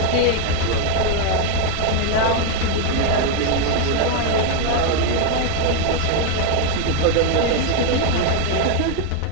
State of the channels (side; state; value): both; different; correlation 0.01